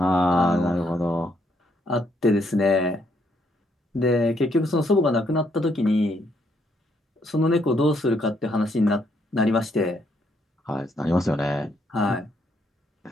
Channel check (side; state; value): both; normal; correlation 0.73